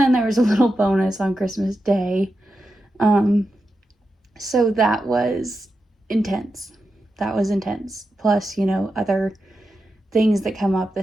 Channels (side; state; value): both; normal; correlation 0.89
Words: there was a little bonus on Christmas Day. So that was intense. Plus, other things that come up